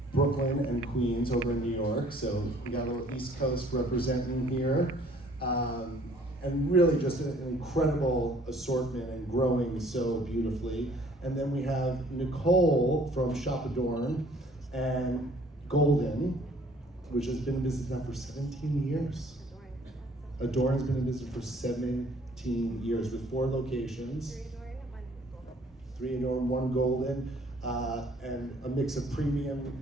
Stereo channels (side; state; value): both; normal; correlation 0.57